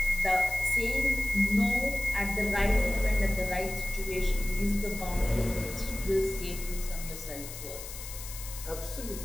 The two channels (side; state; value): left; noise; hiss, 11 dB below the sound